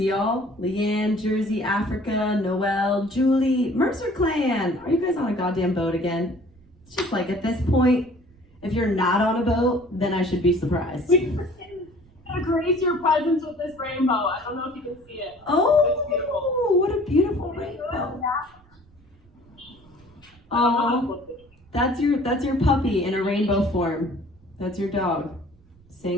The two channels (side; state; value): right; noise; rumble, 28 dB below the sound